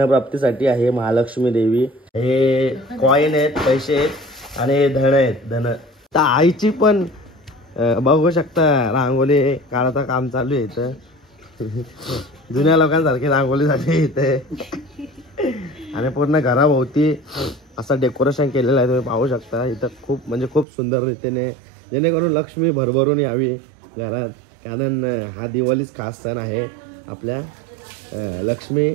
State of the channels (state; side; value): drops out; left; at 20.7 s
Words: आहे महालक्ष्मी देवी. हे कॉईन आहेत, पैसे आहेत, आणि हे धन आहेत धन. तर आईची पण बघू शकता रांगोळी काढायचं काम चालू आहे इथं. जुन्या लोकांसारखी रांगोळी झाली इथे. आणि पूर्ण घराभोवती असं डेकोरेशन केलेलं आहे, तुम्ही पाहू शकता इथं. खूप म्हणजे खूप सुंदर रीतीने, जेणेकरून लक्ष्मी भरभरून यावी घरात. कारण हा दिवाळीच खास सण आहे आपल्या लक्ष्मी